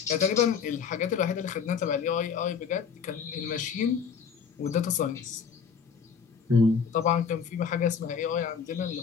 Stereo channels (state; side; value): quieter; right; 6.5 dB